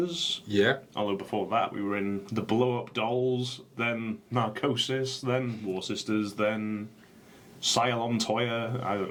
Yeah. Although before that, we were in the Blow Up Dolls, then Narcosis, then War Sisters, then Cylon Toya. I don't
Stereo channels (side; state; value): both; identical; correlation 1.00